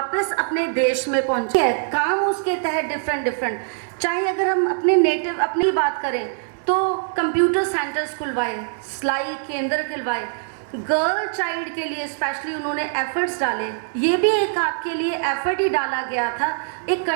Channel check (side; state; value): left; silent; digital silence